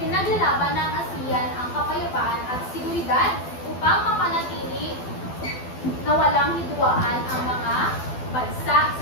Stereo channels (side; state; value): right; late; 12 ms